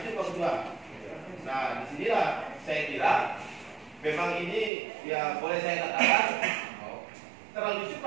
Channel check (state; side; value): drops out; left; at 4.7 s